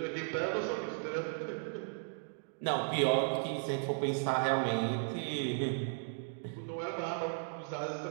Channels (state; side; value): silent; left; digital silence